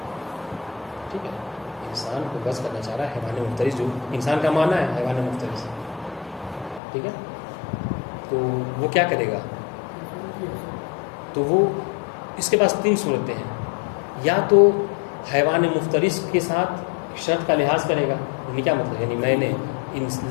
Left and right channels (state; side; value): drops out; right; at 6.8 s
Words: ٹھیک ہے، انسان کو وضع کرنا چاہ رہا ہے حیوان مفترس، جو انسان کا معنی ہے حیوان مفترس، ٹھیک ہے. تو وہ کیا کرے گا، تو وہ اس کے پاس تین صورتیں ہیں، یا تو حیوان مفترس کے ساتھ شرط کا لحاظ کرے گا، یعنی کیا مطلب، یعنی میں نے